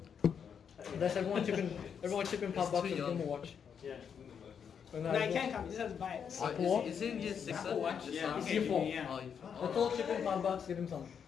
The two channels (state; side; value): quieter; right; 7.3 dB